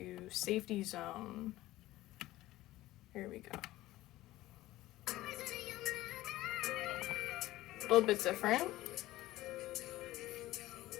Safety Zone. Here we go. A little bit different.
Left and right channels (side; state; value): right; quieter; 16.6 dB